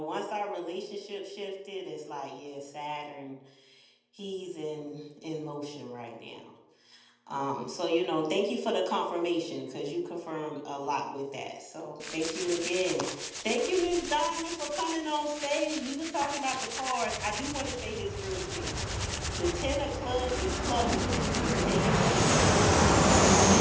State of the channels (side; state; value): both; identical; correlation 1.00